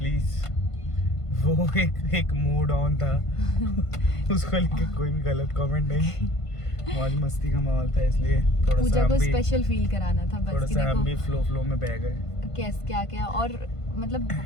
वो एक मूड ऑन था उसको लेके कोई भी गलत कमेंट नहीं। मौज मस्ती का माहौल था, इसलिए थोड़ा पूजा को स्पेशल फील कराना था बस। थोड़ा सा हम भी फ्लो में बह गए। कैस क्या और मतलब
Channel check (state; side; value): late; right; 1.5 ms